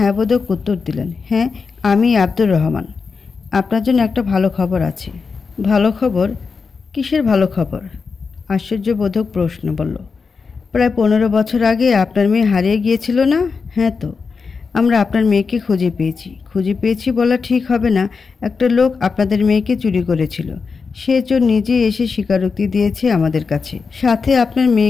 বোধক উত্তর দিলেন। হ্যাঁ, আমি আব্দুর রহমান। আপনার জন্য একটা ভালো খবর আছে। ভালো খবর? কিসের ভালো খবর? আশ্চর্যবোধক প্রশ্ন বলল। প্রায় 15 বছর আগে আপনার মেয়ে হারিয়ে গিয়েছিল না? হ্যাঁ তো, আমরা আপনার মেয়েকে খুঁজে পেয়েছি বলা ঠিক হবে না। একটা লোক আপনাদের মেয়েকে চুরি করেছিল। সে চোর নিজেই এসে স্বীকারোক্তি দিয়েছে আমাদের কাছে। সাথে আপনার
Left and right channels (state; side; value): quieter; right; 5.0 dB